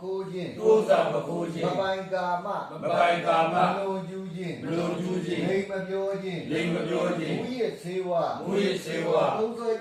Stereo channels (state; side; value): identical; both; correlation 1.00